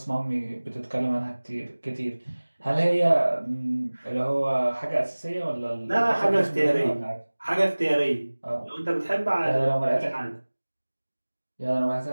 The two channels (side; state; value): both; inverted; correlation -1.00